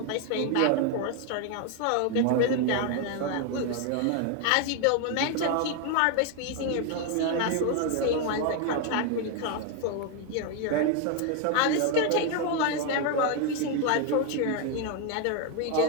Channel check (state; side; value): different; both; correlation 0.01